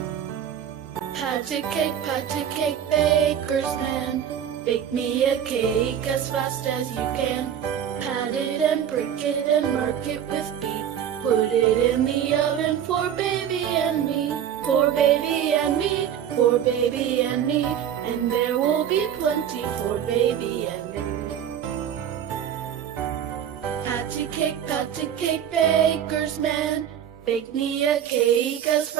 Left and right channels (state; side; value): quieter; left; 9.3 dB